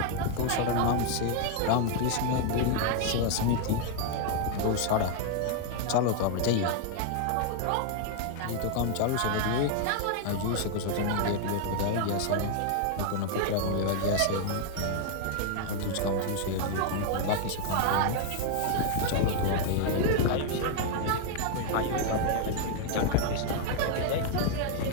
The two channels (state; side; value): different; both; correlation 0.00